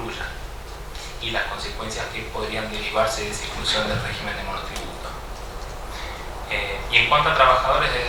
y las consecuencias que podrían derivarse de esa exclusión del régimen de monotributo. Y en cuanto a trabajadores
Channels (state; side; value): identical; both; correlation 1.00